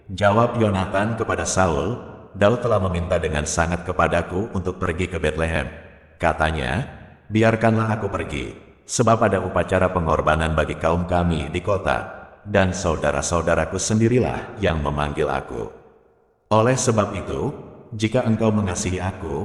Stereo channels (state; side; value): identical; both; correlation 1.00